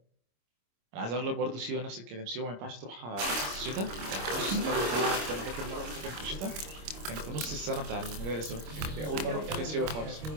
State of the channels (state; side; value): late; left; 26 ms